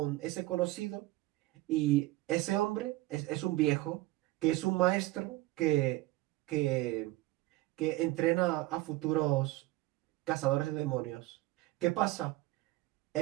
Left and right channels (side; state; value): left; quieter; 18.5 dB